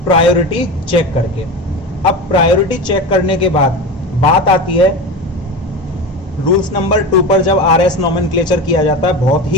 प्रायोरिटी चेक करके। अब प्रायोरिटी चेक करने के बाद बात आती है रूल्स नंबर 2 पर, जब RS नोमेनक्लेचर किया जाता है। बहुत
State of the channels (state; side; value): normal; both; correlation 0.26